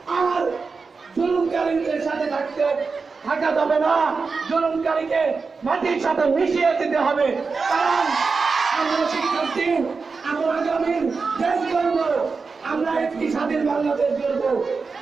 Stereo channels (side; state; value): left; quieter; 4.6 dB